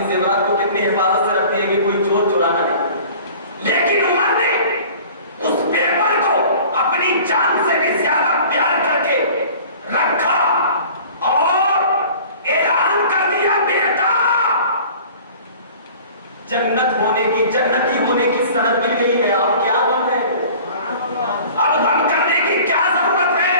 زیورات کو کتنی حفاظت سے رکھتی ہے کہ کوئی چور چرانا نہیں، لیکن عمر نے اس پیپر کو اپنی جان سے بھی زیادہ پیار کر کے رکھا اور اعلان کر دیا، بیٹا جنت ہونے کی، جنتی ہونے کی سند مل گئی ہے، اب کیا غم ہے؟ اب غم کرنے کی کیا ضرورت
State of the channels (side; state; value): both; inverted; correlation -0.45